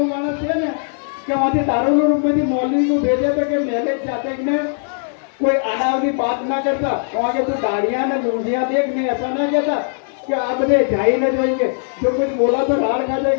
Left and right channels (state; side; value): silent; right; 61 dB below the other